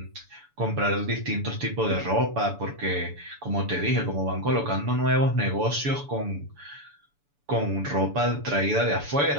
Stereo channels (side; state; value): left; late; 7.0 ms